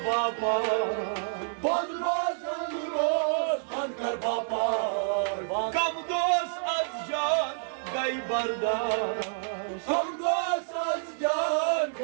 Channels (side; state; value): left; silent; 59 dB below the other